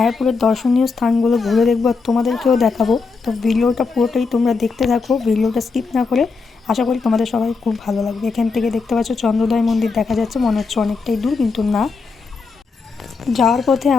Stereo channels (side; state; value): right; quieter; 4.6 dB